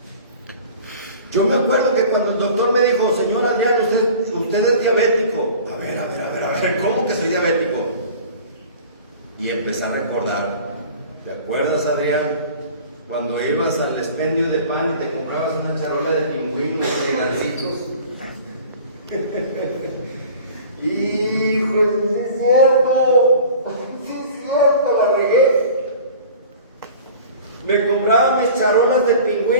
Yo me acuerdo que cuando el doctor me dijo: señor Adrián, usted es diabético. A ver, ¿cómo que soy diabético? Y empecé a recordar. ¿Te acuerdas, Adrián? Cuando ibas al expendio de pan y te comprabas una charola de pingüinos y gancitos. Hijo, sí es cierto, la regué. Me compraba mis charolas de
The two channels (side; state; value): both; inverted; correlation -0.43